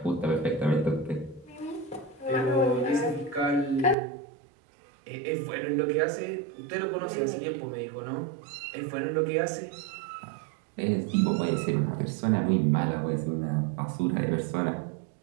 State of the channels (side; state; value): left; drops out; at 4.0 s